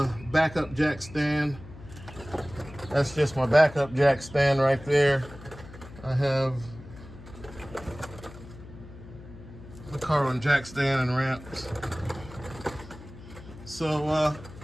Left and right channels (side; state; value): left; noise; hum, 17 dB below the sound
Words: backup jack stand. That's just my backup jack stand right there. I have the carbon jack stand and ramps. So